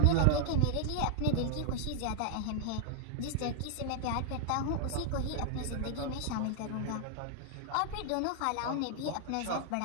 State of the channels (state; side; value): different; both; correlation 0.00